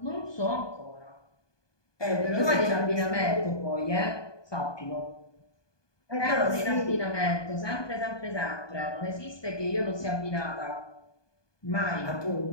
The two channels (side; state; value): right; late; 1.2 ms